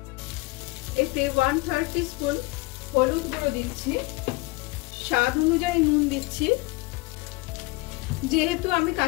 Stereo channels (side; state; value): right; quieter; 23.2 dB